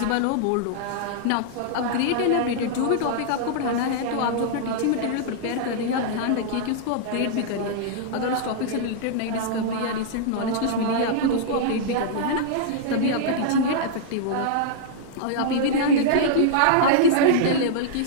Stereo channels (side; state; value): both; different; correlation -0.02